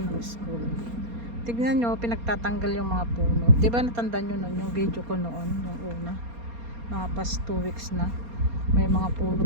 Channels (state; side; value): late; left; 4.3 ms